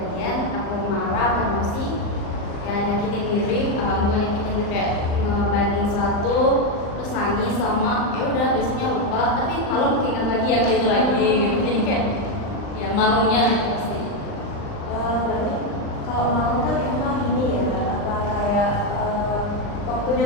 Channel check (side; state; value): right; late; 39 ms